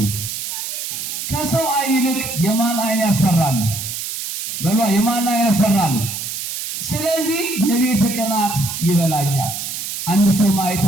ከሰው አይን ይልቅ የማን አይን ያስፈራል? በሏ። የማን አይን ያስፈራል? ስለዚህ የቤተ ቅናት ይበላኛል። አንድ ሰው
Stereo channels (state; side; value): noise; right; hiss, 5 dB below the sound